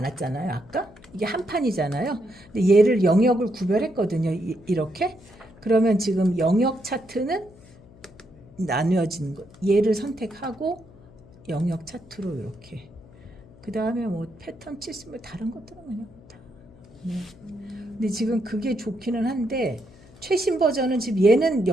아까 이게 한 판이잖아요. 근데 얘를 영역을 구별했거든요. 이렇게. 그러면 지금 영역 차트는 나누어진 거. 얘를 선택하고 영역 차트로 이렇게. 그 다음에 뭐 패턴 치스면 다른 것들은 그냥 다. 네. 근데 지금 그게 좋기는 한데 최신 버전은 지금 얘는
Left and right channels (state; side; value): noise; left; hum, 23 dB below the sound